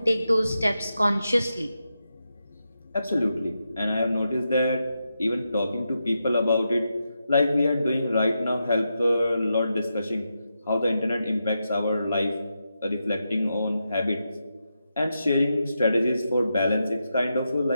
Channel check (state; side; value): inverted; both; correlation -0.86